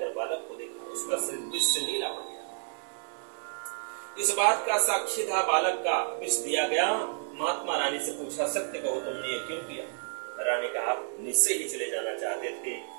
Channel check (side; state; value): left; silent; 57 dB below the other